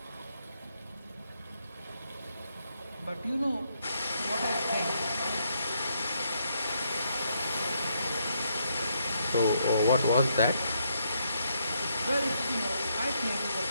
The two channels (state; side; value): inverted; both; correlation -0.76